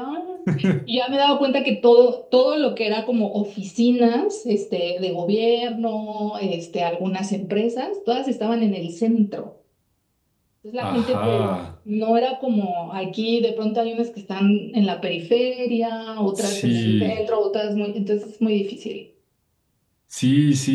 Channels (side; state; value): both; identical; correlation 1.00